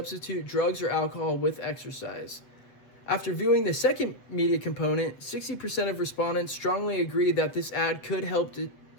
drugs or alcohol with exercise. After viewing the second media component, 60% of respondents strongly agreed that this ad could help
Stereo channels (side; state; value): right; late; 7.6 ms